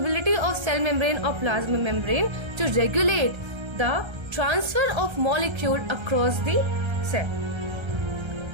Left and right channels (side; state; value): left; late; 1.3 ms